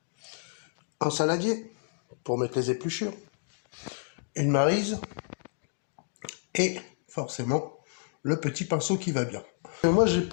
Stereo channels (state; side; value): silent; right; digital silence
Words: un saladier pour mettre les épluchures, une maryse et forcément le petit pinceau qui va bien. Moi j'ai